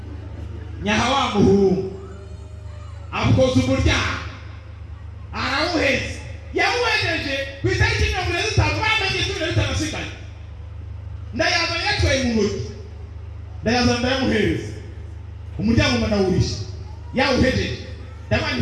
nyahawa muhungu akoze umurya arawuheze yawuhejeje kwitariki 35 bamenye 35 ndayaza yatwaye mu ntoki ndayaza ndayamuhereza umuryango manawurisha yawuhejeje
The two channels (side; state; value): both; identical; correlation 1.00